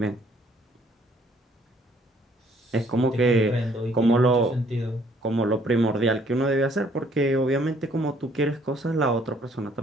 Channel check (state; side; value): normal; both; correlation 0.63